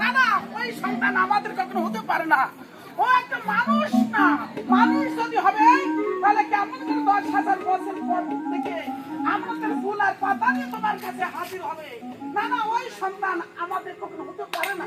না, ওই সন্তান আমাদের কখনো হতে পারে না। ও একটা মানুষ না। মানুষ যদি হবে তাহলে কেমন করে 10,000 বছর পর থেকে আমাদের ফুল আর পাতা নিয়ে তোমার কাছে হাজির হবে? না না, ওই সন্তান আমাদের কখনো হতে পারে না।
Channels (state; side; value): identical; both; correlation 1.00